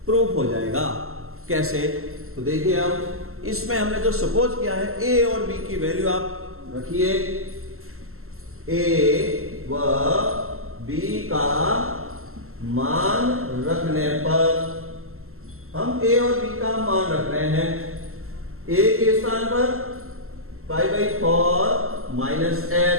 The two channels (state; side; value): late; left; 0.62 ms